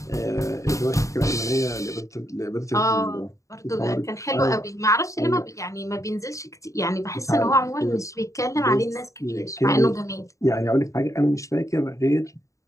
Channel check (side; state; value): right; late; 0.15 ms